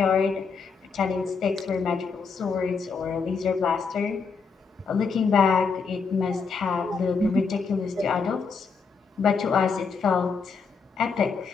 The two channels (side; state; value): right; quieter; 5.2 dB